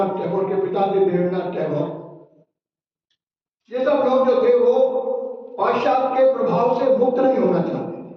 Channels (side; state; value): both; identical; correlation 1.00